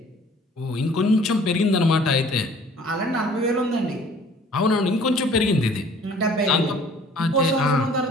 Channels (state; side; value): normal; both; correlation 0.53